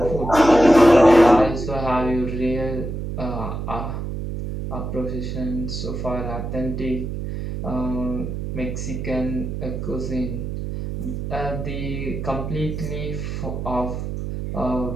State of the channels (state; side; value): noise; right; hum, 5 dB below the sound